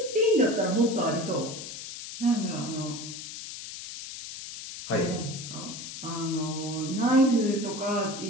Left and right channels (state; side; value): noise; left; hiss, 10 dB below the sound